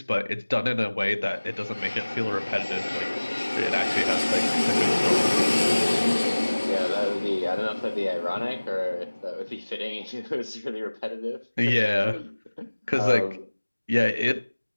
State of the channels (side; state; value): both; inverted; correlation -1.00